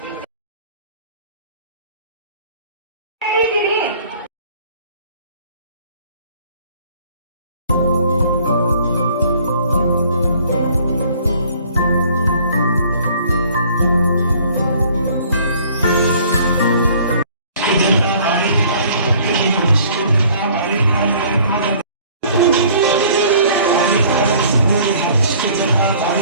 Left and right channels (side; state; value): both; inverted; correlation -0.55